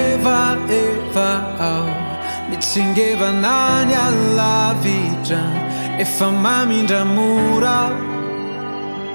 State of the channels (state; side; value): inverted; both; correlation -1.00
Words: Mitsingeva nani alla vita E famami ndamura